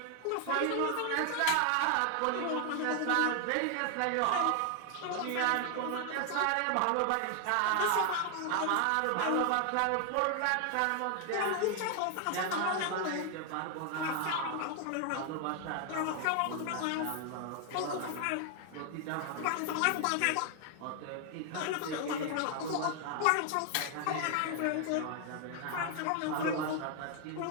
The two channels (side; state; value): both; different; correlation 0.00